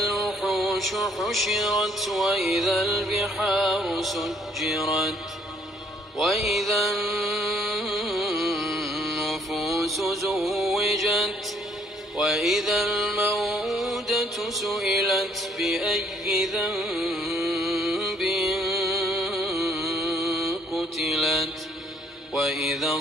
حشرت وإذا البحار سجرت وإذا النفوس زوجت وإذا الموءودة سئلت بأي ذنب قتلت وإذا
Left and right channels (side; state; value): both; normal; correlation 0.64